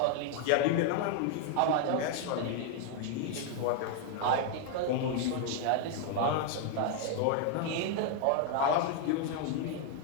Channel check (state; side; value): different; both; correlation 0.00